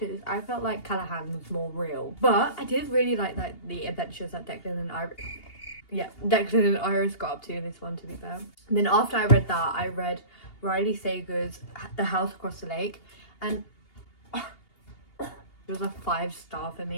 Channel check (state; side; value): late; right; 2.8 ms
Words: I felt like Callahan was more real, but I did really like the adventures that Declan and Iris got up to in this one, to be fair. And then after I read that, I read Riley Sager's The House Across the Lake, and it was a 5-star for